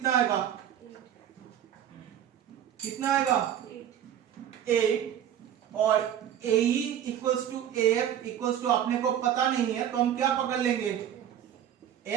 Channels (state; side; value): quieter; left; 10.2 dB